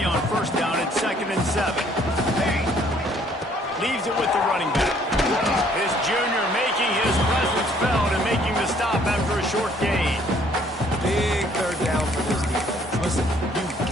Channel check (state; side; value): normal; both; correlation 0.62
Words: on first down. It's second and 7. Leaves it with the running back. His junior making his presence felt and making the stop after a short gain. Big third down for this defense. Listen, you've